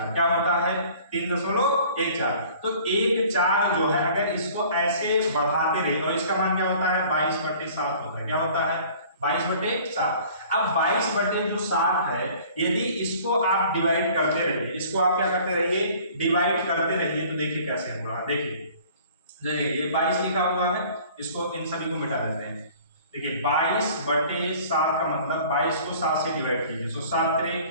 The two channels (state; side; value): inverted; both; correlation -0.50